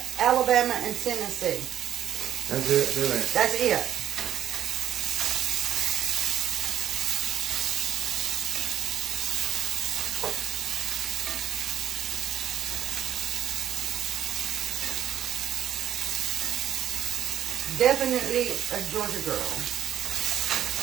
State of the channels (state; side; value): quieter; left; 10.6 dB